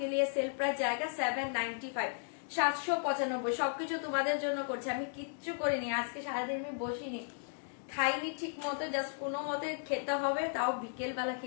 লিয়ে সেল প্রাইস জায়গা 795, 795। সবকিছু তোমাদের জন্য করছে, আমি কিচ্ছু করিনি। আজকে সারাদিন আমি বসিনি, খাইনি ঠিক মতো, জাস্ট কোনো মতে খেতে হবে, তাও বিকেল বেলা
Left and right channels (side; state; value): right; silent; digital silence